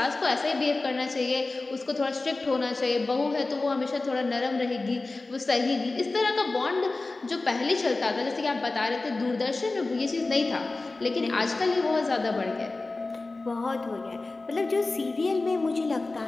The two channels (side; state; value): right; quieter; 3.3 dB